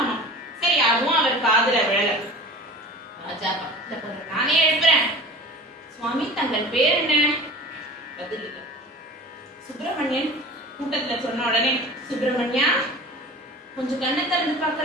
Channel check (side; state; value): both; normal; correlation 0.38